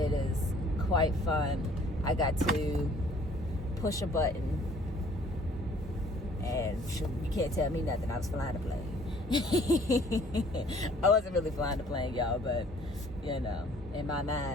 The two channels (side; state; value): both; normal; correlation 0.57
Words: quite fun. I got to push a button, and you can't tell me nothing. I was flying a plane. I wasn't really flying the plane, y'all, but you know, in my